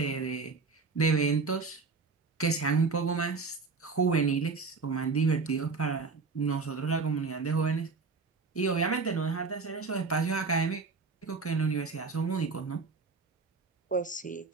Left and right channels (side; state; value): left; quieter; 4.4 dB